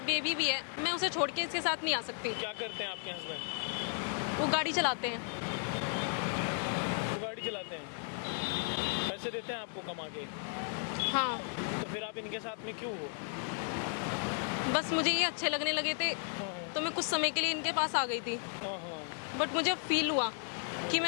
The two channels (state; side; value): silent; right; 55 dB below the other